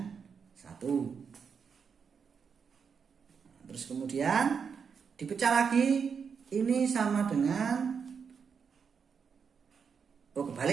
1. Terus kemudian dipecah lagi, ini sama dengan,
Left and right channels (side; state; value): left; quieter; 6.3 dB